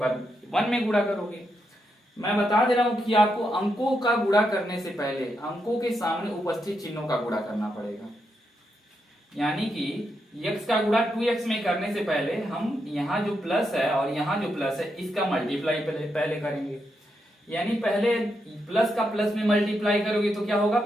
1 में गुणा करोगे। मैं बता दे रहा हूं कि आपको अंकों का गुणा करने से पहले अंकों के सामने उपस्थित चिन्हों का गुणा करना पड़ेगा, यानी कि x का गुणा 2x में करने से पहले हम यहाँ जो प्लस है और यहाँ जो प्लस है इसका मल्टीप्लाई पहले करेंगे। यानी पहले प्लस का प्लस में मल्टीप्लाई करोगे तो क्या होगा,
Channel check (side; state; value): both; normal; correlation 0.82